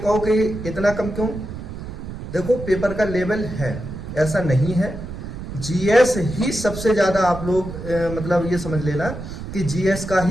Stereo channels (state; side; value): noise; right; rumble, 9 dB below the sound